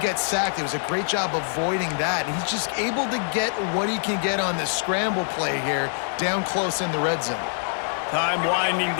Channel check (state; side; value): silent; right; digital silence